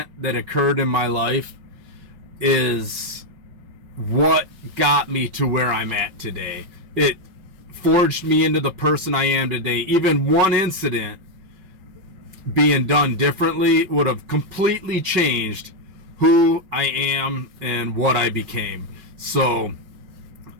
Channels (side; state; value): left; late; 5.4 ms